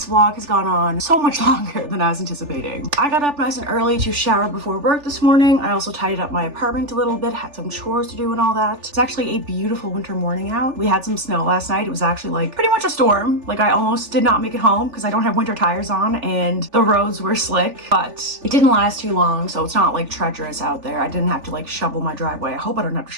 vlog has gone on so much longer than I was anticipating. I got up nice and early to shower before work this morning. I also tidied up my apartment a little bit, had some chores to do and all that. It's actually a beautiful winter morning out. We had some snow last night. It was actually like pretty much a storm. Like I almost did not make it home because I don't have winter tires on and the roads were slick, but it didn't last too long, so it's not like treacherous out there. I didn't have to like shovel my driveway. I hope I don't have to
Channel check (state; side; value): late; left; 3.4 ms